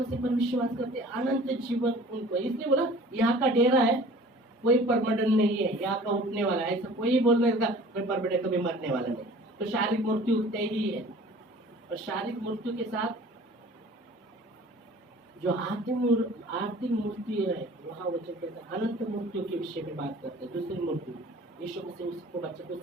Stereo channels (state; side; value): normal; both; correlation 0.47